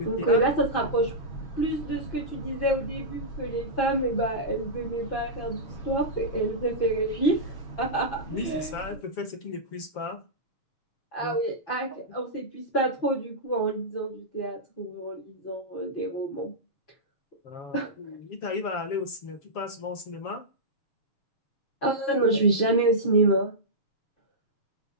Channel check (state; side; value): late; right; 7.2 ms